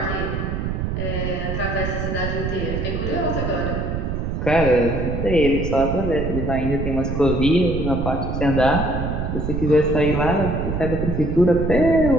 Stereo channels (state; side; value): noise; right; rumble, 2 dB below the sound